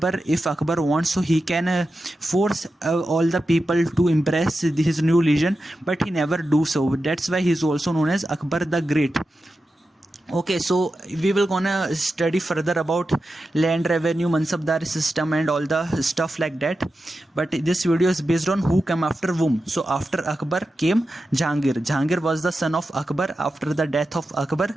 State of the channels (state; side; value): normal; both; correlation 0.91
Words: if Akbar wants, so he can force all the people to embrace his new religion, but he never do so. That's why he is also known as Akbar the Great. Okay, so we will gonna study further about land revenue, mansabdari system and all the stuff like that. But this video is based on who came after whom. So after Akbar came Jahangir. Jahangir was the son of Akbar. After the death of Akbar,